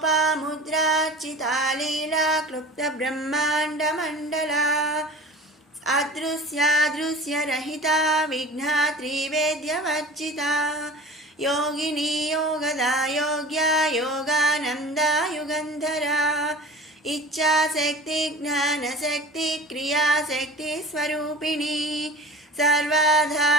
లీలా క్లుప్త బ్రహ్మాండమండలా అదృశ్యాదృశ్యరహితా విఘ్నాత్రివేద్యవర్జితా యోగినీ యోగదా యోగ్యా యోగానందా యుగంధరా ఇచ్ఛాశక్తి జ్ఞానశక్తి క్రియాశక్తి స్వరూపిణీ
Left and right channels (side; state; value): both; normal; correlation 0.39